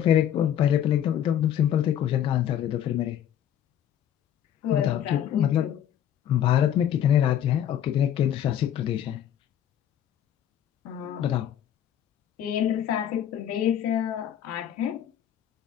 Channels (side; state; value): right; quieter; 10.2 dB